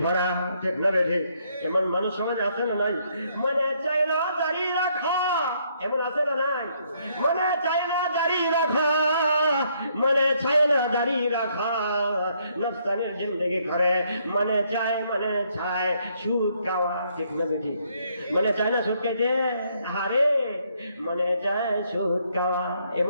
পরা, ঠিক না ঠিক? এমন মানুষ সমাজ আছে না নাই? মনে চাই না দাড়ি রাখা, এমন আছে না নাই? মনে চাই না দাড়ি রাখা, মনে চাই না দাড়ি রাখা, নফসানের জিন্দেগি করে, মনে চায় সুদ খাওয়া, ঠিক না ঠিক? মনে চায় না সুদ খাইতে, হারে মনে চায় সুদ খাওয়া,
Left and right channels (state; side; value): inverted; both; correlation -0.71